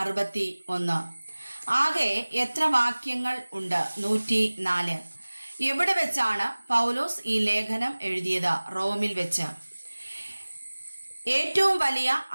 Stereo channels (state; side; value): inverted; both; correlation -1.00